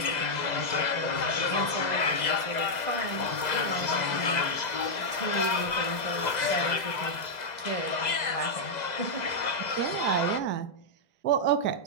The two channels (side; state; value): right; late; 2.0 ms